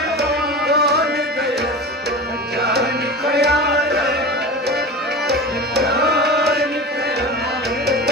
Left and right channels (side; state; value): both; normal; correlation 0.30